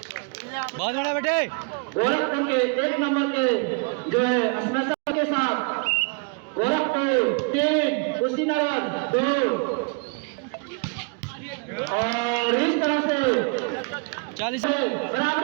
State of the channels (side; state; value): left; quieter; 35.3 dB